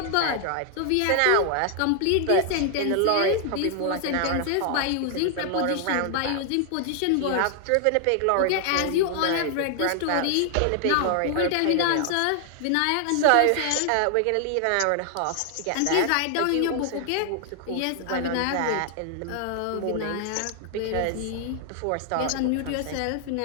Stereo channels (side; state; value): both; different; correlation 0.00